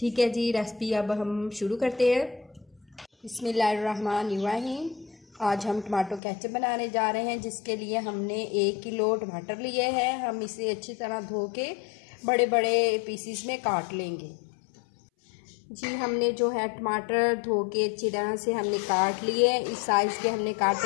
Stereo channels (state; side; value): drops out; right; at 6.2 s